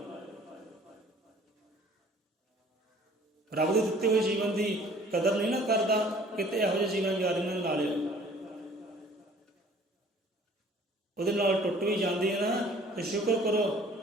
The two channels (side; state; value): both; normal; correlation 0.53